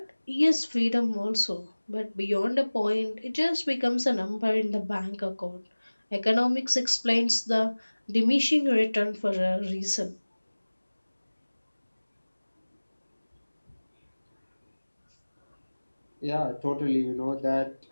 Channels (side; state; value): both; inverted; correlation -1.00